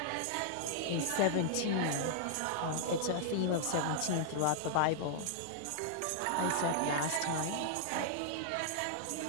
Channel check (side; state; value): both; different; correlation -0.01